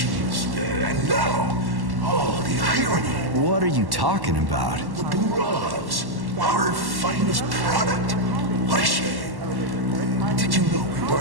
And now, oh, the irony. What are you talking about? The Burovs, our finest product. What a shame. Did you know we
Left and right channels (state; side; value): late; left; 1.1 ms